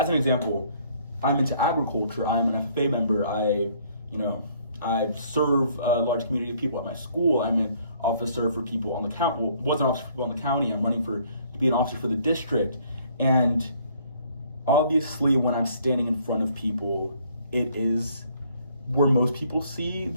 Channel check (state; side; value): inverted; both; correlation -0.62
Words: an example, I'm into agriculture. I'm an FFA member. I serve a large community of people at my school. I'm an officer for people on the county. Well, was an officer for people on the county. I'm running to be an officer for the district. And obviously when I'm standing in front of people it is where most people see